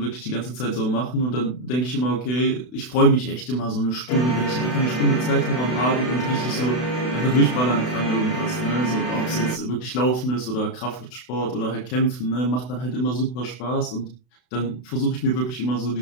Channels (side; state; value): right; late; 32 ms